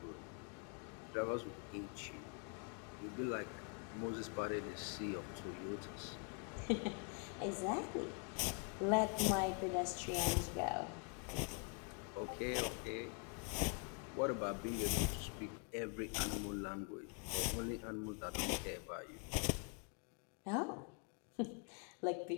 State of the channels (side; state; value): right; quieter; 37.3 dB